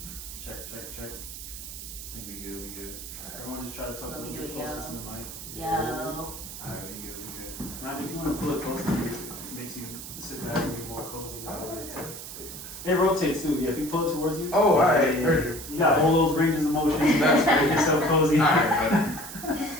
Check. I think we good. Everyone just try to talk a Let me little do bit it, closer yo. to the mic. Yo. Alright, we good. Now, if you want to pull it closer, it makes you sit back and be more cozy. It rotates too. Yeah, if you pull it towards you. Oh, alright, heard you. You got all those ranges of motion. That's make yourself cozy. Alright,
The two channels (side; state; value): right; noise; hiss, 11 dB below the sound